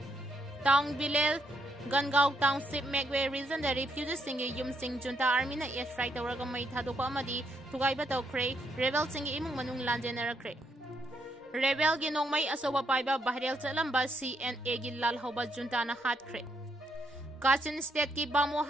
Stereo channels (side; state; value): both; normal; correlation 0.76